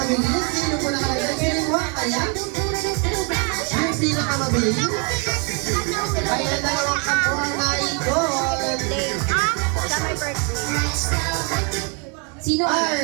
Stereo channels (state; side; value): quieter; left; 35.7 dB